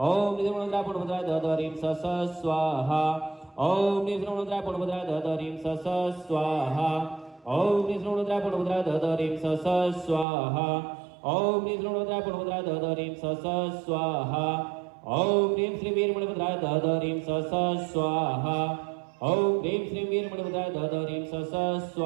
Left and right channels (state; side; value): drops out; left; at 10.2 s